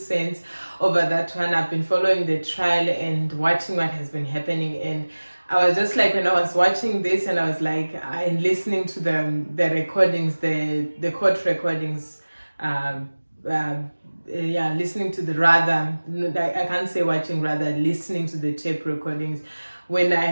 over that one. I've been following the trial and watching what has been happening, and I was just like, when I was watching this and I was like, and listening to the recordings, the court recordings, listening to the, rather, I can't say watching, rather listening to the tape recordings, when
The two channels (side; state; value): both; inverted; correlation -1.00